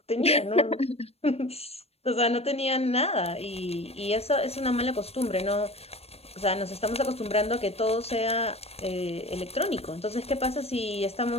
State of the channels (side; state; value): right; late; 0.29 ms